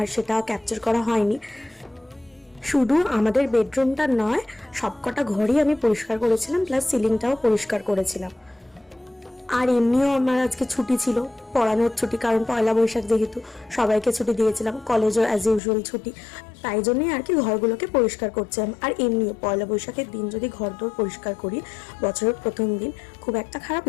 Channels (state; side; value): drops out; right; at 15.6 s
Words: সেটা ক্যাপচার করা হয়নি। শুধু আমাদের বেডরুমটা নয়, সবকটা ঘরই আমি পরিষ্কার করেছিলাম, প্লাস সিলিংটাও পরিষ্কার করেছিলাম। আর এমনিও আমার আজকে ছুটি ছিল, পড়ানোর ছুটি, কারণ পয়লা বৈশাখ যেহেতু সবাইকে ছুটি দিয়েছিলাম, কলেজও অ্যাজ ইউজুয়াল ছুটি। তাই জন্যই আর কি ঘরগুলোকে পরিষ্কার করছিলাম। আর এমনিও পয়লা বৈশাখের দিন যদি ঘরদোর পরিষ্কার করি, বছরের প্রথম দিন, খুব একটা খারাপ